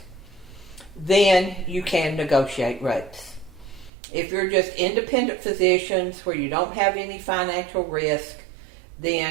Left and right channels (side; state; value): left; drops out; at 3.9 s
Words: then you can negotiate rates. If you're just independent physicians where you don't have any financial risk,